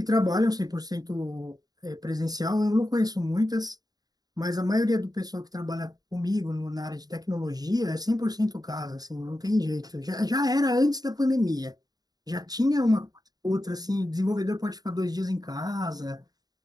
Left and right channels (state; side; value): late; left; 0.19 ms